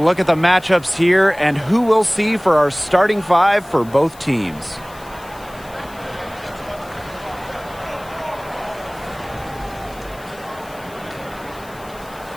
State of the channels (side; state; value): left; noise; hiss, 23 dB below the sound